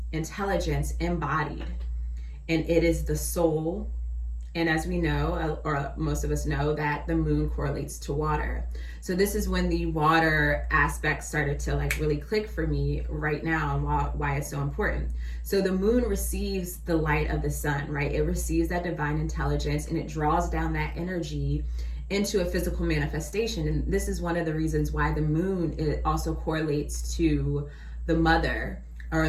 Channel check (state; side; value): identical; both; correlation 1.00